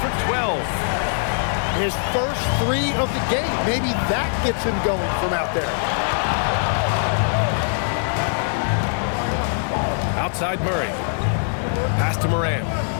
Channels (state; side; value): silent; right; digital silence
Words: 12. His first 3 of the game. Maybe that gets him going from out there. Outside Murray. Pass to Morant.